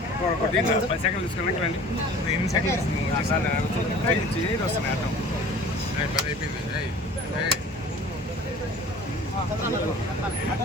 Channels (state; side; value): normal; both; correlation 0.45